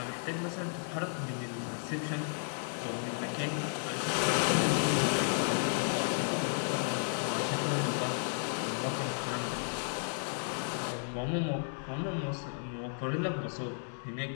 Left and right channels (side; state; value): right; silent; digital silence